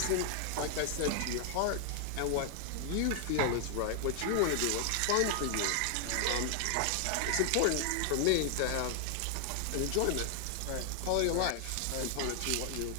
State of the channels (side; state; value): both; different; correlation 0.00